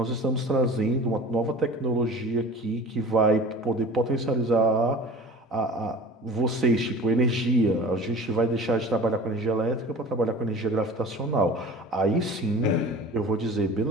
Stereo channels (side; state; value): both; normal; correlation 0.39